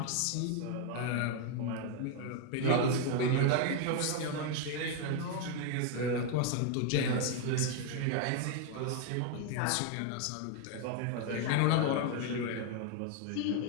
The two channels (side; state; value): both; different; correlation 0.01